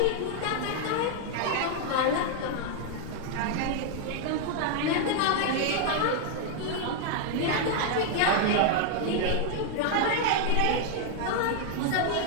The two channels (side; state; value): both; different; correlation 0.00